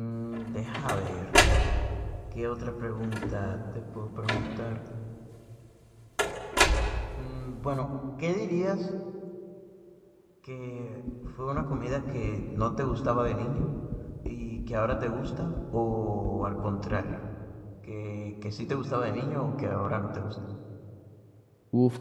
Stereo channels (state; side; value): identical; both; correlation 1.00